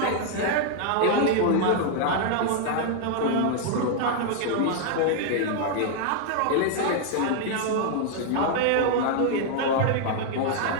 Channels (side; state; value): both; different; correlation 0.00